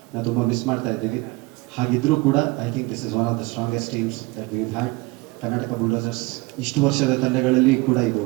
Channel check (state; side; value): quieter; left; 23.0 dB